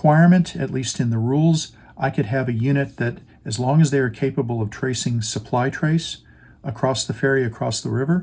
at least in the rules. I could have a unit that, as long as they are capable of tracing supply trace across the ferry, across the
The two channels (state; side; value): identical; both; correlation 1.00